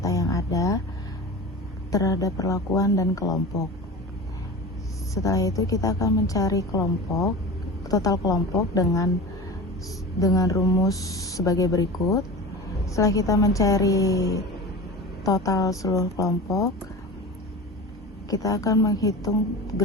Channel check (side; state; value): both; normal; correlation 0.32